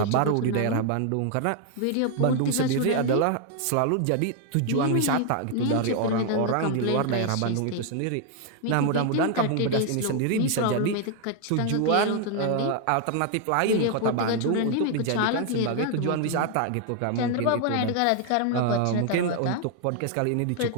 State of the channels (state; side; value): different; both; correlation 0.00